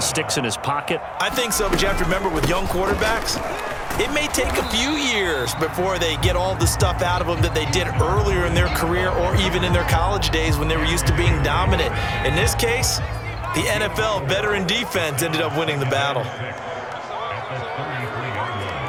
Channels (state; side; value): identical; both; correlation 1.00